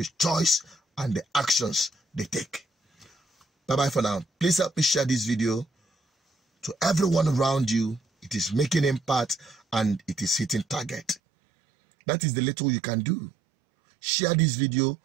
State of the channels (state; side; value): drops out; left; at 11.2 s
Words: choice and the actions they take. Bye-bye for now. Please help me share this video to everyone around you. It is making impact and it is hitting target. That is the little you can do. Share this video.